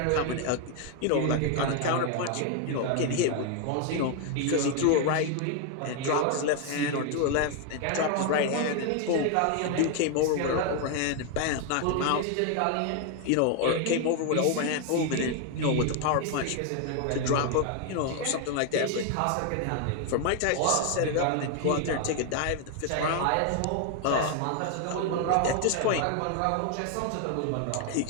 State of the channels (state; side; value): different; both; correlation 0.01